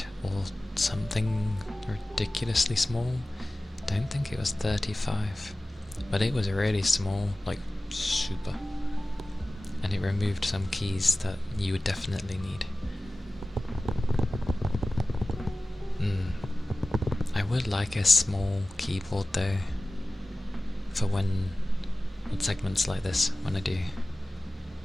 or something ridiculously small. Don't think it was 35, but it was really small, like super. And it removed some keys that you would definitely need. would like a small keyboard though, for when segments like this, when I do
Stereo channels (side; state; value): both; normal; correlation 0.97